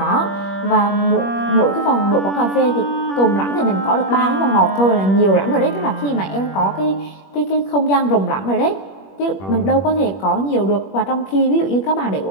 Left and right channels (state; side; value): late; right; 21 ms